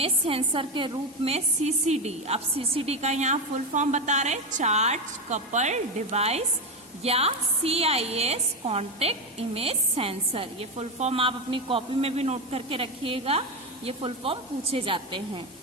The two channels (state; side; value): normal; both; correlation 0.14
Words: सेंसर के रूप में CCD, अब CCD का यहाँ फुल फॉर्म बता रहे, चार्ज कपल डिवाइस, या CIS कॉन्टेक्ट इमेज सेंसर। ये फुल फॉर्म आप अपनी कॉपी में भी नोट करके रखिएगा, ये फुल फॉर्म पूछे जाते हैं।